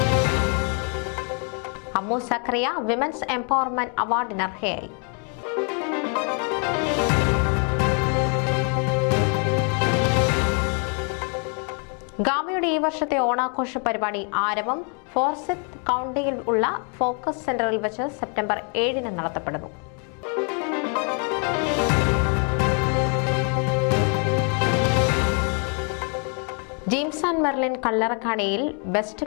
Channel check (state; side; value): quieter; right; 39.1 dB